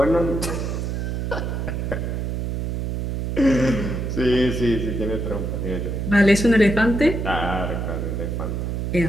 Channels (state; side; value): noise; right; hum, 2 dB below the sound